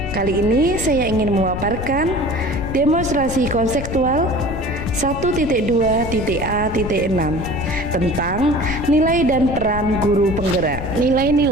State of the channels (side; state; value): left; noise; rumble, 7 dB below the sound